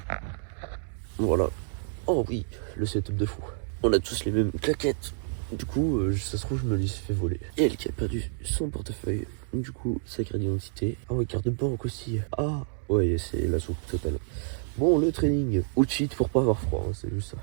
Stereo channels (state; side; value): silent; left; 59 dB below the other